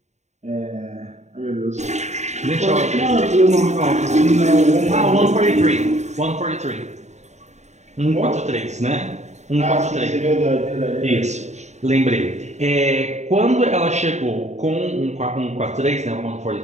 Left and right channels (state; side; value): late; left; 0.33 ms